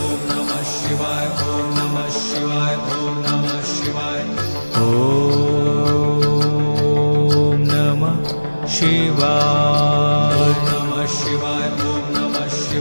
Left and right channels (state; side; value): inverted; both; correlation -1.00